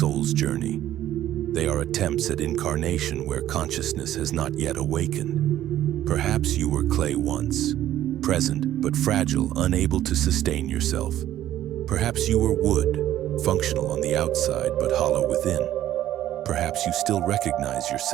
journey. They are attempts at incarnation where consciousness has not yet awakened. Perhaps you were clay once, present but fragile, unable to sustain yourself. Perhaps you were wood, functional on the outside but hollow within. Perhaps you still recognize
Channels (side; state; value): left; quieter; 12.7 dB